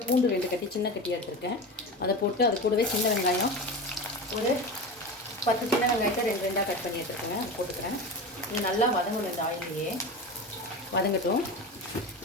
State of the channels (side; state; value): both; normal; correlation 0.27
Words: பூண்டு 2 கட்டி சின்ன கட்டியாக எடுத்துருக்கேன். அதை போட்டு அது கூடவே சின்ன வெங்காயம் ஒரு 10 சின்ன வெங்காயத்தை 2 கட் பண்ணி எடுத்துருக்கேங்க. அது போட்டுக்கிறேன். இது நல்லா வதங்கணும். இந்த ஆயிலையே வதங்கட்டும்.